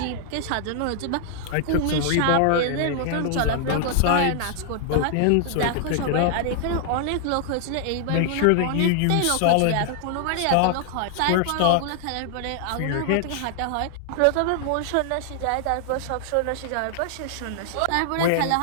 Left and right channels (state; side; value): different; both; correlation 0.00